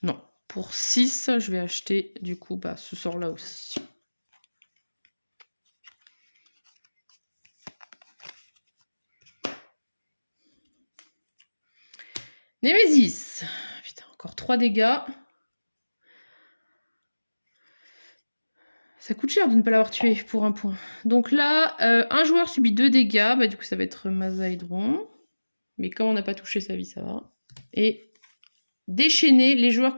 Non, pour 6, je vais acheter du coup ce sort-là aussi. Némésis. Putain, encore 3 dégâts. Ça coûte cher de ne pas l'avoir tué pour un point. Donc là, un joueur subit 2 dégâts. Bah, du coup, ça va être Mazaïdron. Mais comme on n'a pas touché sa vie, ça va. Et déchaîner, les joueurs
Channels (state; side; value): inverted; both; correlation -1.00